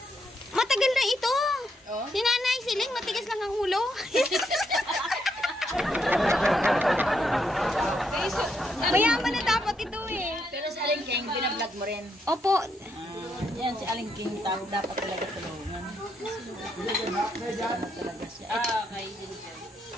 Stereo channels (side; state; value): both; normal; correlation 0.78